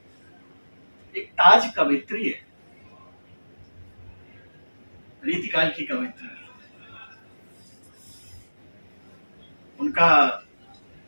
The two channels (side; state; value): both; inverted; correlation -1.00